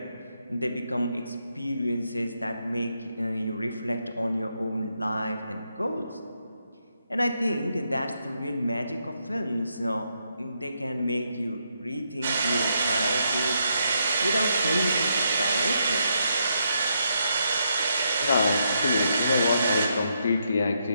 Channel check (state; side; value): inverted; both; correlation -0.79